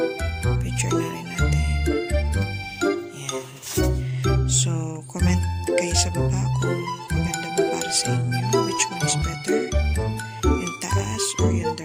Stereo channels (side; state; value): both; identical; correlation 1.00